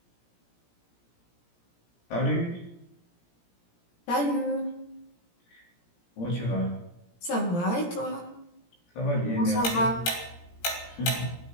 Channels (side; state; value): right; late; 17 ms